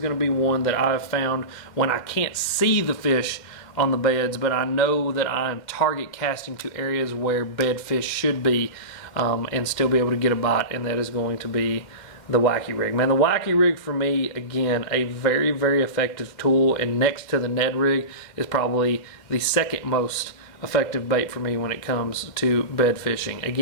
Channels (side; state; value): right; late; 2.1 ms